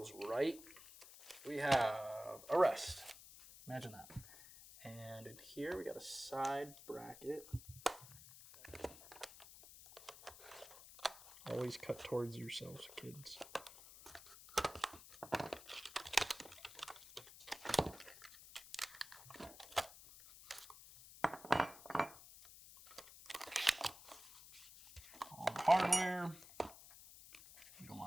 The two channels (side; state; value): left; noise; hiss, 17 dB below the sound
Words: right. We have a rest. Imagine that. And in here we got a side bracket. Always cut towards yourselves, kids. All the hardware. We don't